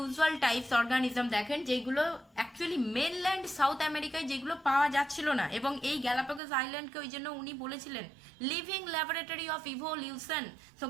types organism দেখেন, যেগুলো অ্যাকচুয়ালি মেনল্যান্ড সাউথ আমেরিকায় যেগুলো পাওয়া যাচ্ছিল না। এবং এই গ্যালাপাগোস আইল্যান্ডকে ওই জন্য উনি বলেছিলেন living laboratory of evolution. So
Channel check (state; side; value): drops out; left; at 6.4 s